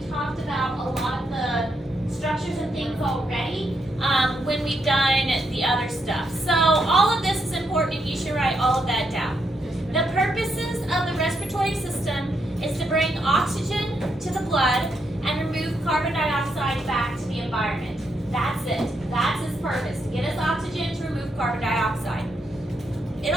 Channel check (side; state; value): both; normal; correlation 0.79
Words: talked about a lot of the structures and things already when we've done the other stuff. So all of this is important, and you should write all of that down. The purposes of the respiratory system is to bring oxygen to the blood and remove carbon dioxide back to the environment. That's it. That's its purpose, to get us oxygen, to remove carbon dioxide. It